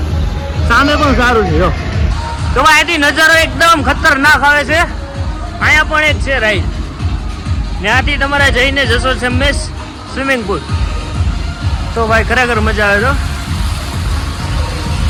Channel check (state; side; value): identical; both; correlation 1.00